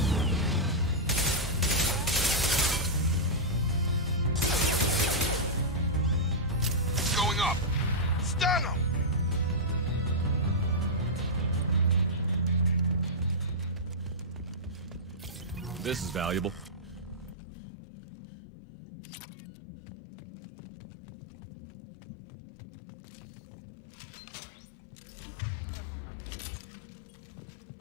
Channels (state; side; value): drops out; right; at 17.4 s